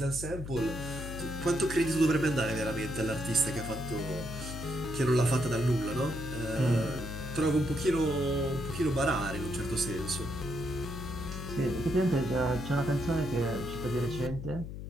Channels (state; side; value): noise; left; hum, 8 dB below the sound